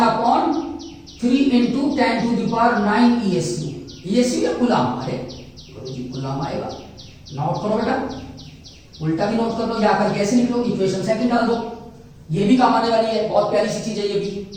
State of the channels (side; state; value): both; identical; correlation 1.00